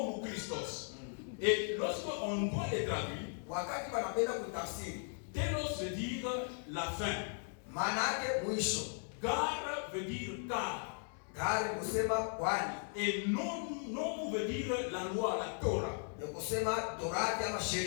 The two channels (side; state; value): right; silent; 53 dB below the other